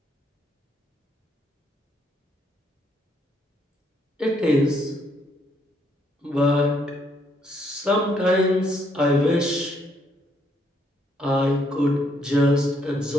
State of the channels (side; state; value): both; normal; correlation 0.71